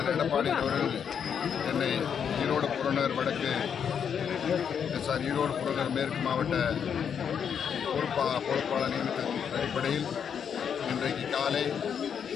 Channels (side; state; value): right; quieter; 7.6 dB